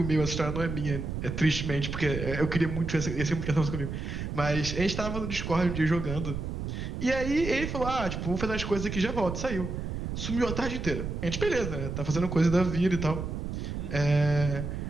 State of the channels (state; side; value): noise; right; rumble, 4 dB below the sound